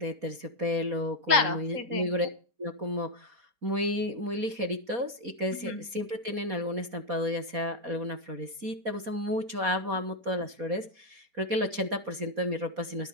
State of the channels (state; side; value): late; left; 4.2 ms